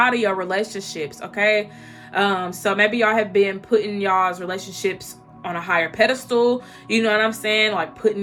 of your relationships, okay? So maybe y'all have been putting y'all's relationships on a higher pedestal. You know what I'm saying? Like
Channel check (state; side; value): identical; both; correlation 1.00